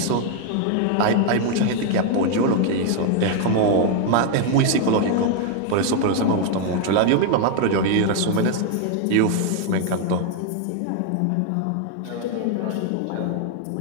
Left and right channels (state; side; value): different; both; correlation 0.01